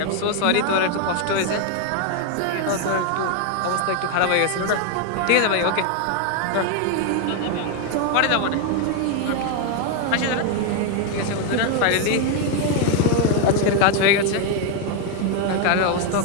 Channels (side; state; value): both; different; correlation 0.01